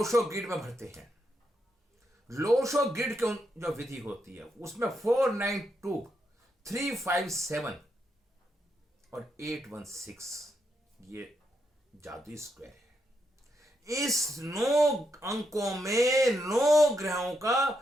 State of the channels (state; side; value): normal; both; correlation 0.81